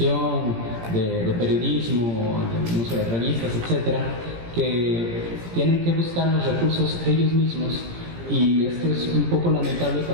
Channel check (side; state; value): left; late; 17 ms